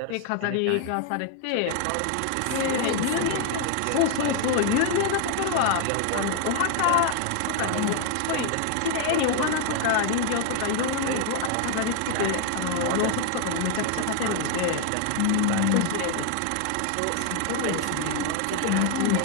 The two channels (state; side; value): different; both; correlation 0.00